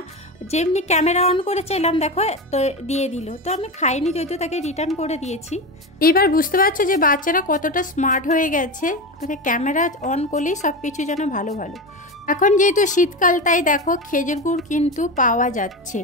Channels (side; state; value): both; normal; correlation 0.21